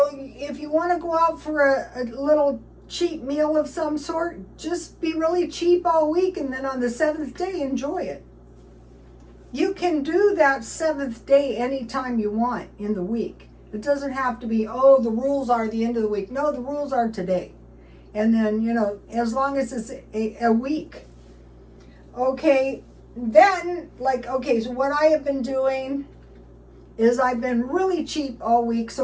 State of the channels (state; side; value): identical; both; correlation 1.00